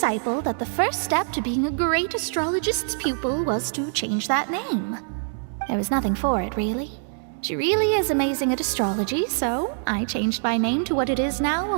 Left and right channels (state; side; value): silent; left; digital silence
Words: that the first step to being a great astrologist's pupil was to change that name. There was nothing for it, really. She really is amazing at astrology, so I changed my name to what it is now